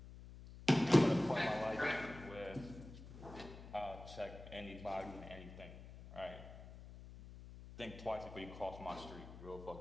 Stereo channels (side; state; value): left; noise; hum, 14 dB below the sound